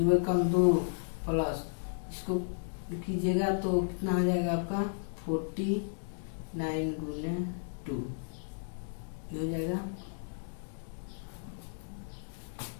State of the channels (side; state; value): right; silent; digital silence